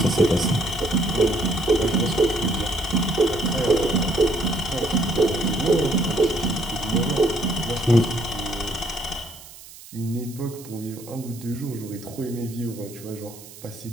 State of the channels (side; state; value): right; noise; hiss, 18 dB below the sound